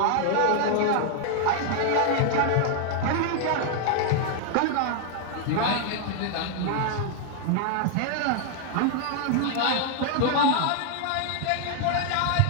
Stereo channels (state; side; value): different; both; correlation 0.00